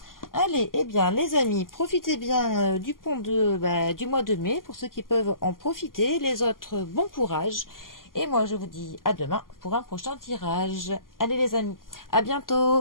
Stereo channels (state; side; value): late; right; 0.91 ms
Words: Allez, eh bien, les amis, profitez bien du pont du mois de mai pour ceux qui peuvent en profiter. Les autres, bon courage. Et moi, je vous dis à demain pour un prochain tirage. Allez, les amis, à